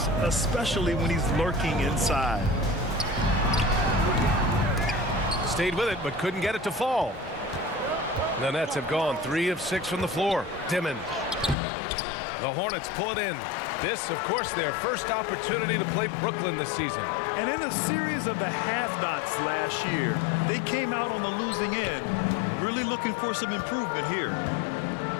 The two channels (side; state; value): right; drops out; at 11.6 s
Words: especially when he's lurking inside. Stayed with it, but couldn't get it to fall. The Nets have gone 3 of 6 from the floor. Dimon. The Hornets pull it in. This, of course, their first opportunity to play Brooklyn this season. And in a series of the have-nots last year, they came out on the losing end, really looking for some improvement here.